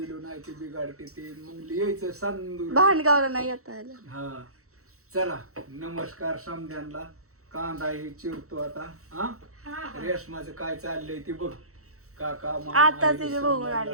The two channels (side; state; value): left; late; 0.64 ms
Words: नाही ते बिघाडते ते मग यायचं सांदूर भांडगावला नाही येता आलं हा चला नमस्कार समध्यांना कांदा हे चिरतो आता हा रेशमाचं काय चाललंय ते बघ काका आता तिथे बघून